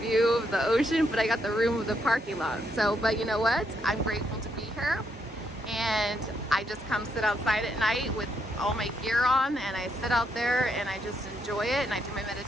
of the ocean, but I got the room with the parking lot. So, but you know what? I'm grateful to be here, and I just come sit outside at night with all my gear on, and I sit out there and I just enjoy it, and I do my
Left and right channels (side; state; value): both; normal; correlation 0.76